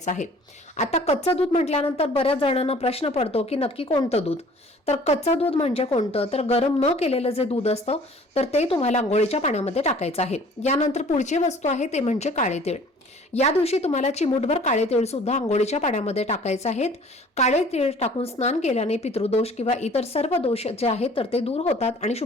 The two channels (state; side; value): normal; both; correlation 0.51